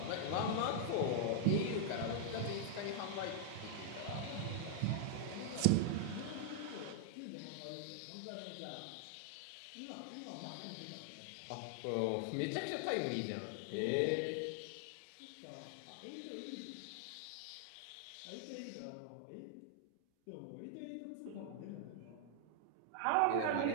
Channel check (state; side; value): different; both; correlation -0.01